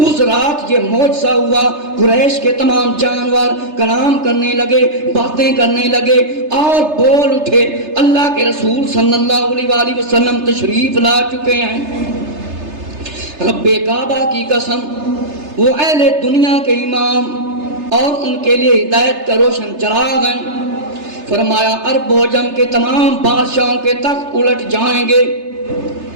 اس رات یہ معجزہ ہوا۔ قریش کے تمام جانور کلام کرنے لگے، باتیں کرنے لگے اور بول اٹھے، اللہ کے رسول صلی اللہ علیہ وآلہ وسلم تشریف لا چکے ہیں۔ رب کعبہ کی قسم، وہ اہل دنیا کے امام اور ان کے لیے ہدایت کا روشن چراغ ہیں۔ فرمایا عرب و عجم کے تمام بادشاہوں کے تخت الٹ جائیں گے۔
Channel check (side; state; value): left; late; 3.3 ms